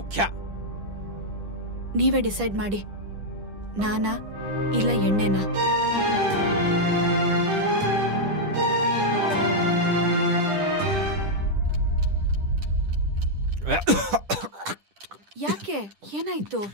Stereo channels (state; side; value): late; left; 10 ms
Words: ನೀವೇ ಡಿಸೈಡ್ ಮಾಡಿ, ನಾನಾ ಇಲ್ಲ ಎಣ್ಣೆನಾ? ಯಾಕೆ, ಏನಾಯ್ತು?